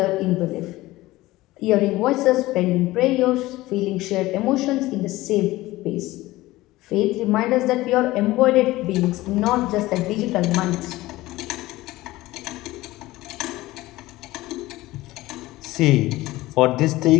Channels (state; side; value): quieter; right; 18.1 dB